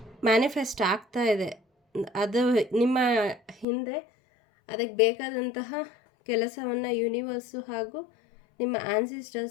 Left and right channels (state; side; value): drops out; right; at 3.7 s